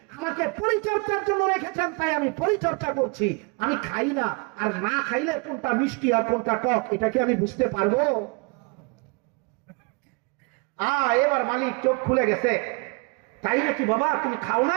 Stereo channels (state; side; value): quieter; left; 31.5 dB